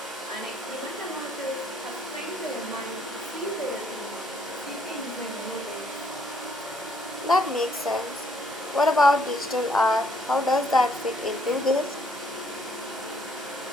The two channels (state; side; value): normal; both; correlation 0.68